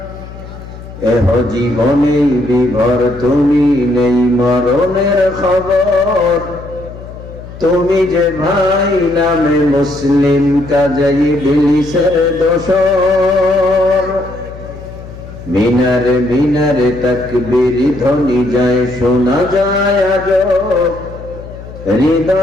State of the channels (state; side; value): noise; left; hum, 15 dB below the sound